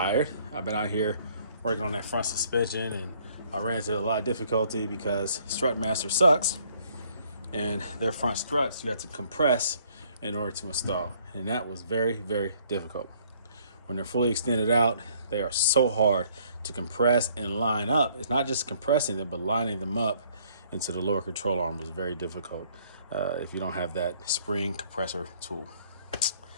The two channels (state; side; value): inverted; both; correlation -0.62